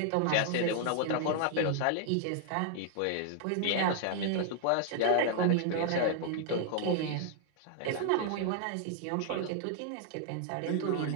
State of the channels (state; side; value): different; both; correlation -0.01